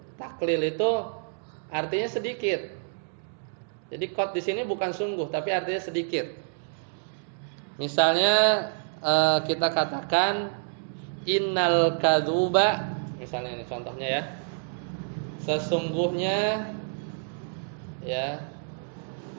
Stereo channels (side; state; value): left; silent; 59 dB below the other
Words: Taklil itu artinya sedikit. Jadi qad di sini bukan sungguh, tapi artinya sedikit. Misalnya kita katakan innal kadzuba, misalnya ini contohnya ya. Sesungguhnya, ya,